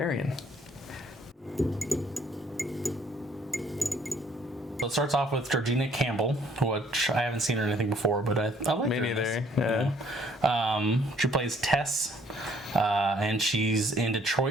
So it starts off with Georgina Campbell, which I haven't seen her in anything before, but I like Me her in neither. this. Yeah. She plays Tess, and she's in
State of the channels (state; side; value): normal; both; correlation 0.62